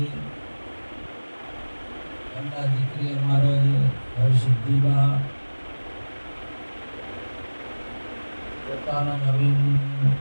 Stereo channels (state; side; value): inverted; both; correlation -1.00